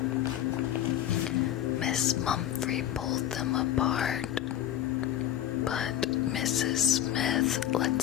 Miss Mumphrey pulled them apart. But Mrs. Smith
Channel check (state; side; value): quieter; right; 11.6 dB